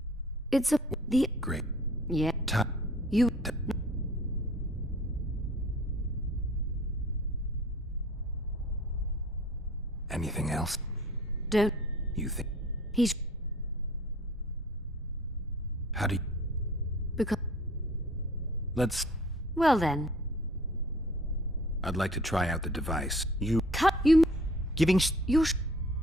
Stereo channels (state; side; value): normal; both; correlation 0.50